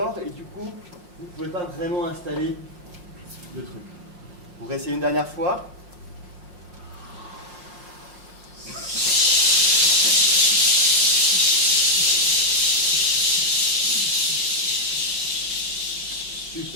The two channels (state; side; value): late; left; 5.6 ms